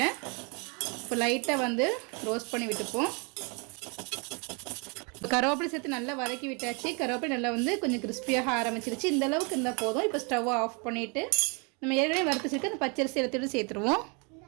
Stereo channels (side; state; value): left; quieter; 33.0 dB